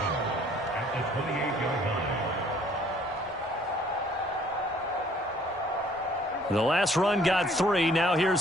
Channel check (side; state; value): both; normal; correlation 0.58